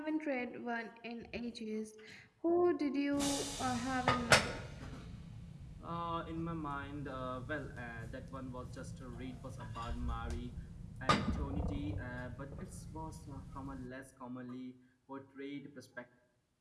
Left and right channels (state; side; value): identical; both; correlation 1.00